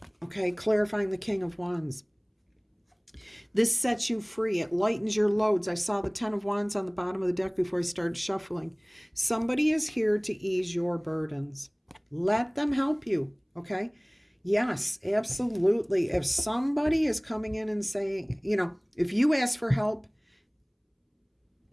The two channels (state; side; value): identical; both; correlation 1.00